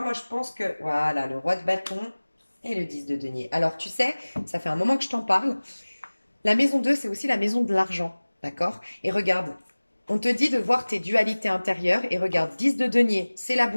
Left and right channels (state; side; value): inverted; both; correlation -1.00